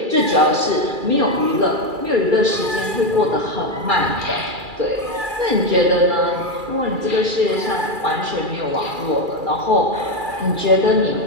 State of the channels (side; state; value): left; late; 2.3 ms